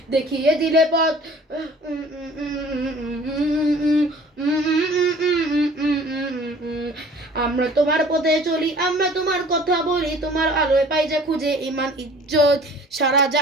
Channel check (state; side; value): normal; both; correlation 0.49